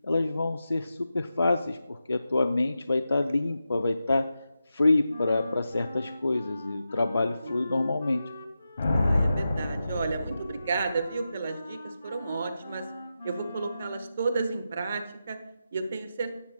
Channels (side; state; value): both; inverted; correlation -0.90